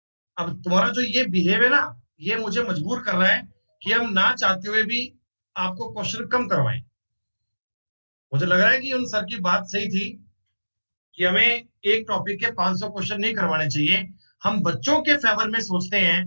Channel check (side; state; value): both; inverted; correlation -1.00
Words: अब तुम्हारा जो ये बिहेव है ना, ये मुझे मजबूर कर रहा है कि हम ना चाहते हुए भी आपको क्वेश्चन कम करवाएं। मुझे लग रहा है कि उन सर की बात सही थी कि हमें एक टॉपिक के 500 क्वेश्चन नहीं करवाने चाहिए। हम बच्चों के फेवर में सोचते हैं,